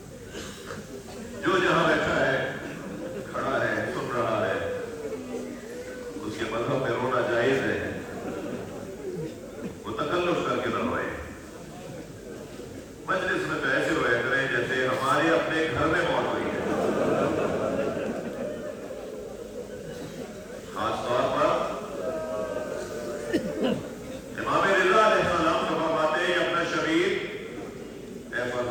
जो जहां बैठा है, खड़ा है, सुन रहा है, उसके मजहब में रोना जायज है, वो तकल्लुफ करके न रोए। मजलिस में तो ऐसे रोया करें जैसे हमारे अपने घर में मौत हुई है। खास तौर पर इमाम रिज़ा अलैहिस्सलाम फरमाते हैं, अपना शबीर, ऐ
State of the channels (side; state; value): both; identical; correlation 1.00